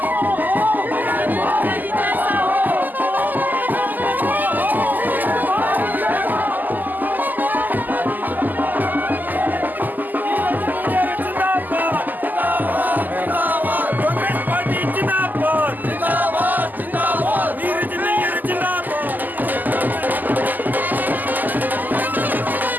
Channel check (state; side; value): late; left; 0.085 ms